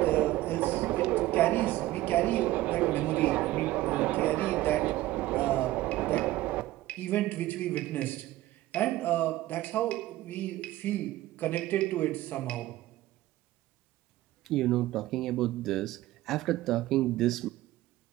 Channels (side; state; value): left; quieter; 16.1 dB